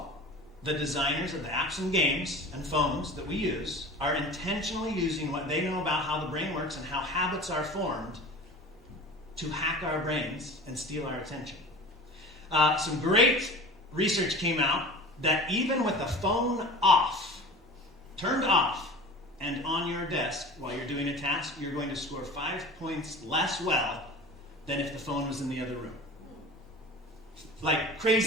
The designers of the apps and games and phones that we use are intentionally using what they know about how the brain works and how habits are formed to hack our brains and steal our attention. Some great research came out that even with the phone off, turned off, and on your desk while you're doing a task, you're going to score 5 points less well than if the phone was in the other room. Like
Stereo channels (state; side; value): normal; both; correlation 0.38